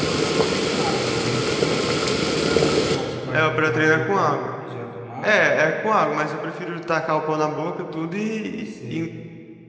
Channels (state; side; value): identical; both; correlation 1.00